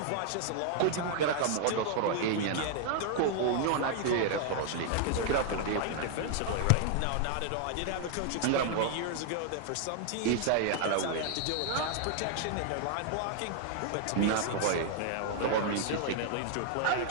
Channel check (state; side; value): different; both; correlation 0.00